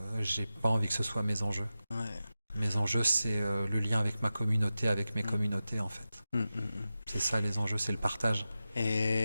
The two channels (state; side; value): inverted; both; correlation -0.93